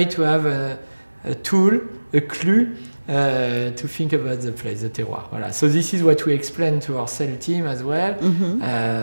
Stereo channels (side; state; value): both; inverted; correlation -1.00